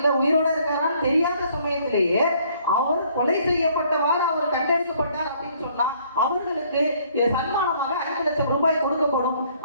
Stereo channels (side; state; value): both; inverted; correlation -0.62